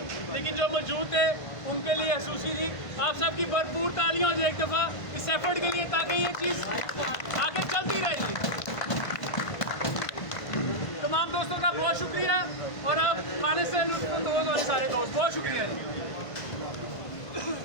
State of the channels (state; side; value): late; right; 1.5 ms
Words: लेकिन जो मौजूद थे उनके लिए खसूसी थी। आप सबकी भरपूर तालियां हो जाए एक दफ़ा इस एफर्ट के लिए ताकि ये चीज़ आगे चलती रहेगी। तमाम दोस्तों का बहुत शुक्रिया और आप खाने से लुत्फ़अंदोज़ वाले सारे दोस्त बहुत शुक्रिया।